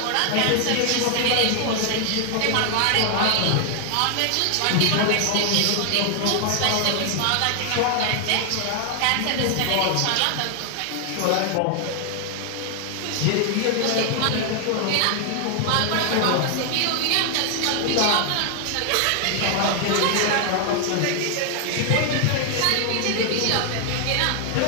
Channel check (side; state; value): both; different; correlation 0.00